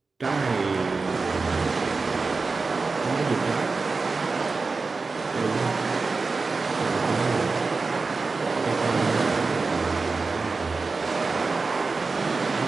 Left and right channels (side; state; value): left; quieter; 4.1 dB